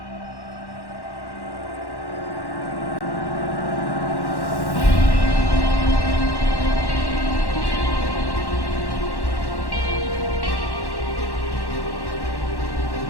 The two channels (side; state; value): right; late; 1.1 ms